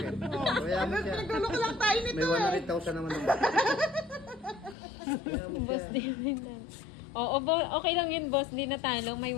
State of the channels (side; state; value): right; drops out; at 4.8 s